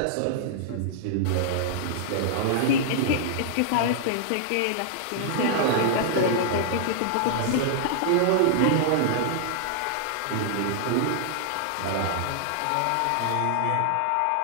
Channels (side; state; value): both; different; correlation -0.01